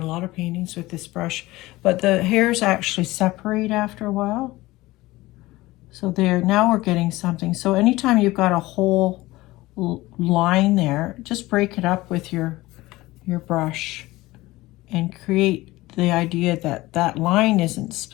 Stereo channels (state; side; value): quieter; right; 19.0 dB